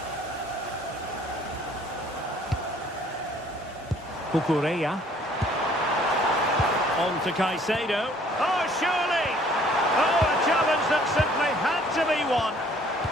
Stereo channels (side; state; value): both; normal; correlation 0.58